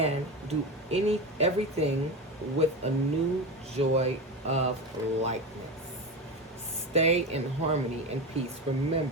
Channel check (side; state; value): both; normal; correlation 0.22